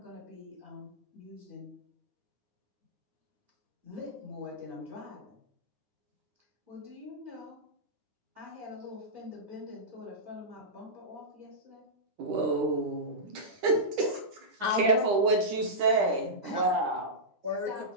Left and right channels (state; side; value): late; left; 10 ms